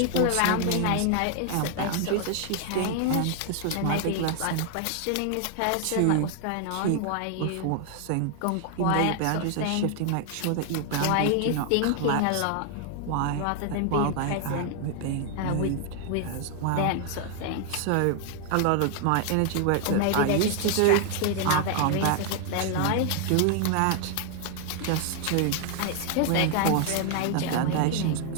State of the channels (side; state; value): both; different; correlation 0.00